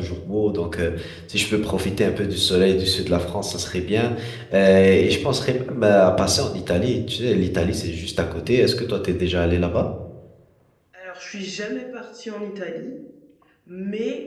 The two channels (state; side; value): identical; both; correlation 1.00